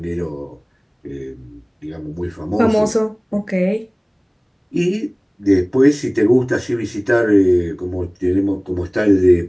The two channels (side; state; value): both; identical; correlation 1.00